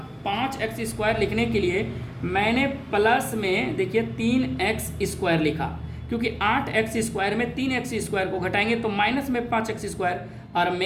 5x² लिखने के लिए, मैंने प्लस में देखिए 3x² लिखा, क्योंकि 8x² में 3x² को घटाएंगे तो माइनस में 5x², और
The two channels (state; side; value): identical; both; correlation 1.00